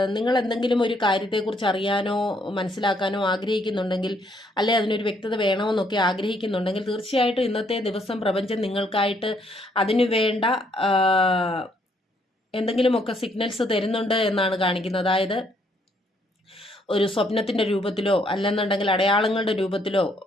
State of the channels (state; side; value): normal; both; correlation 0.70